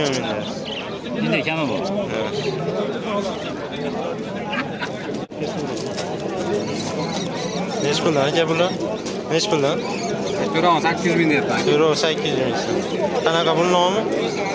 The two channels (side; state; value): both; identical; correlation 1.00